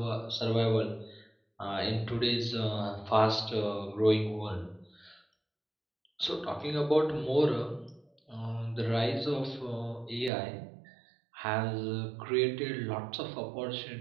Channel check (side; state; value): left; drops out; at 10.3 s